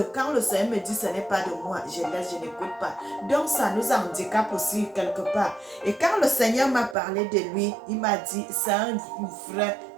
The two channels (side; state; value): left; drops out; at 7.0 s